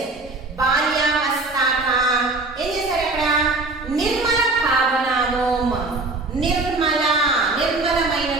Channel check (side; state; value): left; quieter; 3.3 dB